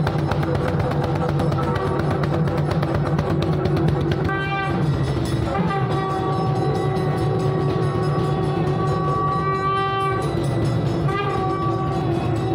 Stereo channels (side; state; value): both; identical; correlation 1.00